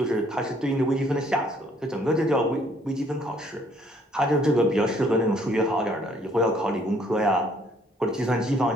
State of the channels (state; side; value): normal; both; correlation 0.63